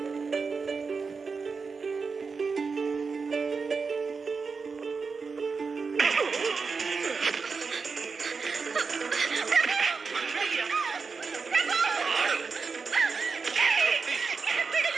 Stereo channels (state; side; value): quieter; left; 4.9 dB